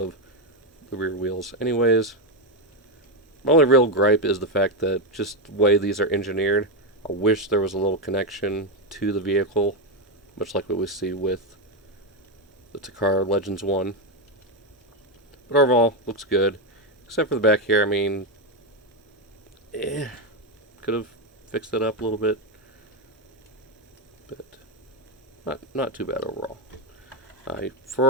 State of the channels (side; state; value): both; normal; correlation 0.07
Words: the rear wheels anyways. My only real gripe is the fact that just the way these are engineered, I wish there was a little connection to the vehicle, much like what we see with the Takara Legends 1. But overall, looks good. Except for the back here, I mean, could have fixed it up a little bit. But not too bad overall.